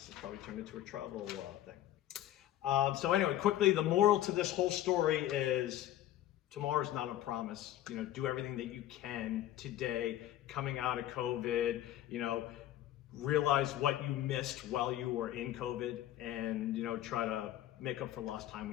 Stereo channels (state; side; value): quieter; right; 13.1 dB